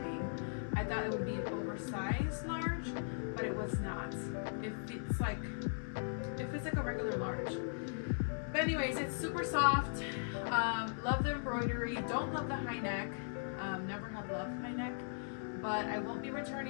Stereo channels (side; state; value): right; silent; 52 dB below the other